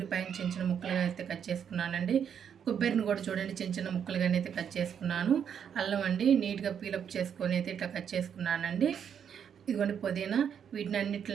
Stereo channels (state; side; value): quieter; left; 8.1 dB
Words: చిన్న చిన్న ముక్కలుగా అయితే కట్ చేసుకున్నానండి. కొబ్బరిని కూడా చూడండి చిన్న చిన్న ముక్కలుగానే అయితే కట్ చేసుకున్నాను. అల్లం అండి, నీట్గా పీలప్ చేసుకొని అయితే ఇట్లా కట్ చేసుకున్నానండి. ఇదిగోండి పుదీనా. వీటిని